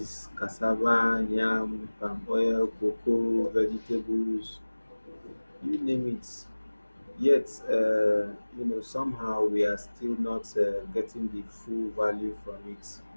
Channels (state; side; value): inverted; both; correlation -1.00